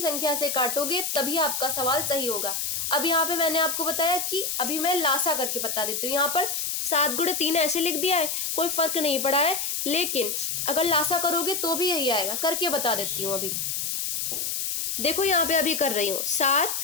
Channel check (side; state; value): left; noise; hiss, 1 dB below the sound